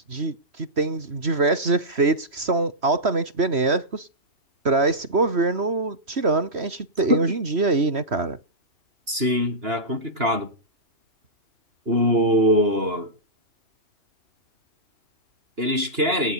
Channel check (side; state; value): left; late; 2.9 ms